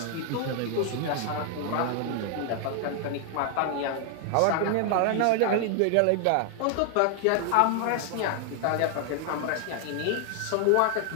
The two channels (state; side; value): different; both; correlation 0.00